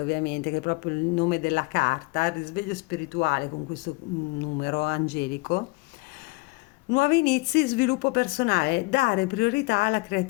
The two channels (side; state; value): right; quieter; 25.6 dB